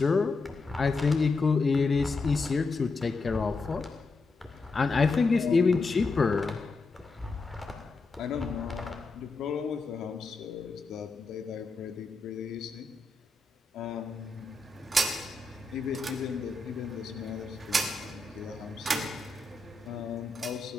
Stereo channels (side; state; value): right; quieter; 3.6 dB